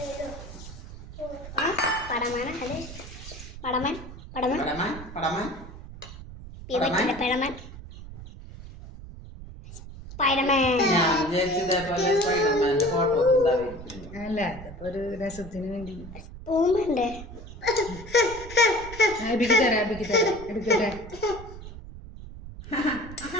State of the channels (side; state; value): right; noise; rumble, 13 dB below the sound